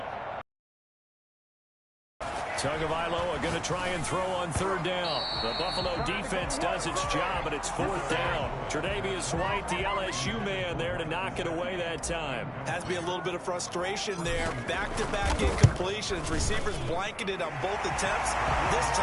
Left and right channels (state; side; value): identical; both; correlation 1.00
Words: Tagovailoa going to try and throw on 3rd down. The Buffalo defense does its job, and it's 4th down. Tre'Davious White, the LSU man, there to knock it away that time. Has to be a little bit of frustration there. Back-to-back incompletions. Receivers blanketed on both attempts, this